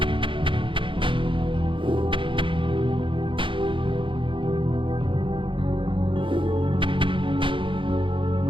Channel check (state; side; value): late; left; 0.25 ms